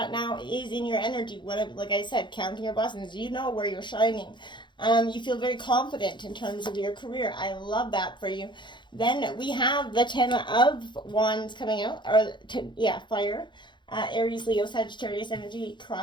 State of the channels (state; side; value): late; right; 0.23 ms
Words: now is in your energy. Like I said, counting your blessings. You know where you're shining. You feel very confident in terms of your career. I love that for you. Then we have the 10 of Wands coming out. Fire. Aries, Leo, Sagittarius energy